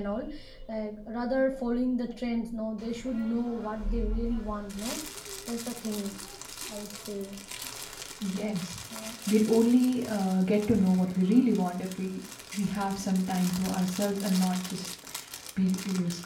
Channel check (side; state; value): both; identical; correlation 1.00